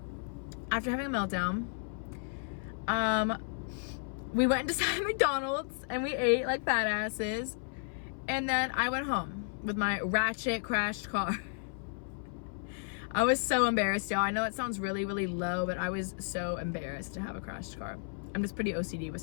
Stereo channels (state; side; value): silent; right; 56 dB below the other